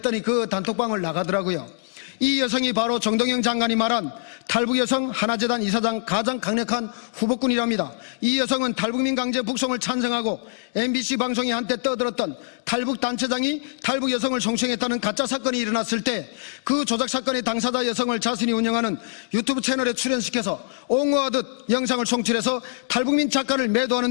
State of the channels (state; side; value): silent; right; digital silence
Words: 그 단톡방을 나가더라고요. 이 여성이 바로 정동영 장관이 말한 탈북여성 하나재단 이사장 가장 강력한 후보꾼이랍니다. 이 여성은 탈북민 강제 북송을 찬성하고 MBC 방송이 한때 떠들었던 탈북단체장이 탈북여성을 성추행했다는 가짜 사건이 일어났을 때 그 조작 사건의 당사자 여성을 자신이 운영하는 유튜브 채널에 출연시켜서 옹호하듯 영상을 송출해서 탈북민 작가를 매도하는